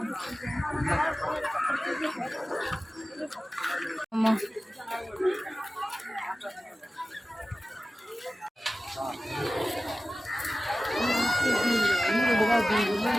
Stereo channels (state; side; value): normal; both; correlation 0.96